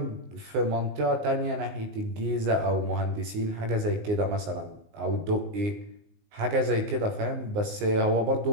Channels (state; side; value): late; left; 19 ms